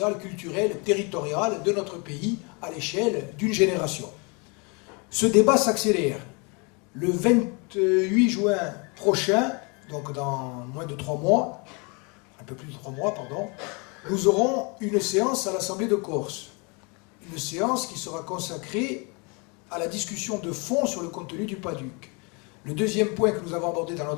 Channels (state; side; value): quieter; right; 31.3 dB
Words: culturel, territorial de notre pays à l'échelle d'une génération. Ce débat s'accélère. Le 28 juin prochain, donc dans moins de 3 mois, un peu plus de 3 mois, pardon, nous aurons une séance à l'Assemblée de Corse. Une séance qui sera consacrée à la discussion de fond sur le contenu du PADUC. Le deuxième point que nous avons abordé dans